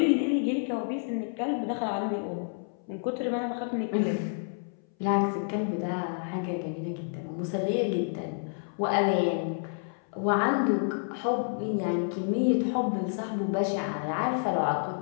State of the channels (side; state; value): right; silent; 58 dB below the other